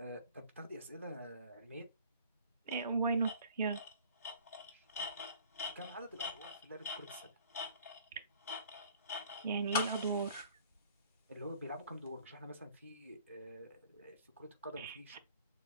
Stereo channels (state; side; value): inverted; both; correlation -0.51